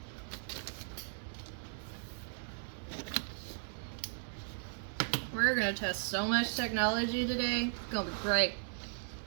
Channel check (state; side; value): silent; left; 53 dB below the other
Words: gonna test so much technology today. It's gonna be great.